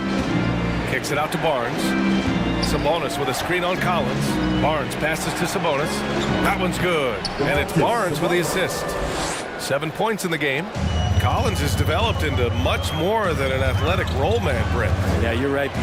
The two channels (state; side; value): identical; both; correlation 1.00